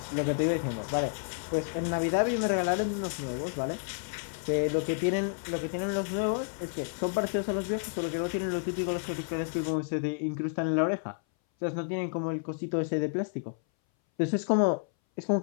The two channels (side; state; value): right; silent; 58 dB below the other